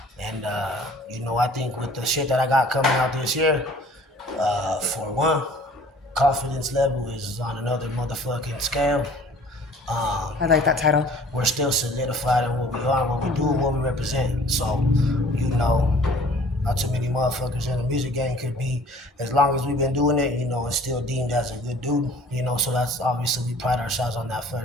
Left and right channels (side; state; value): both; normal; correlation 0.51